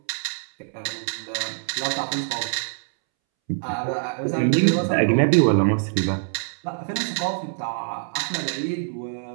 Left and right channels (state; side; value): silent; left; 62 dB below the other